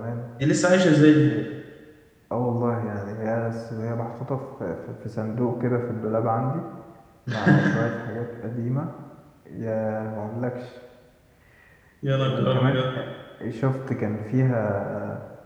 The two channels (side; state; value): both; identical; correlation 1.00